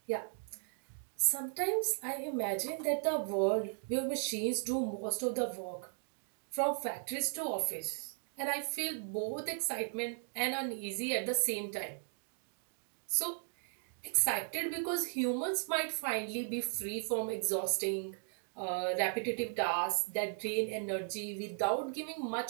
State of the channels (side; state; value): left; silent; 53 dB below the other